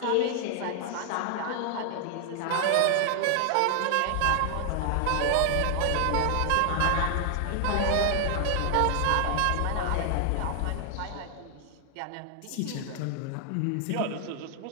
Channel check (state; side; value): different; both; correlation 0.00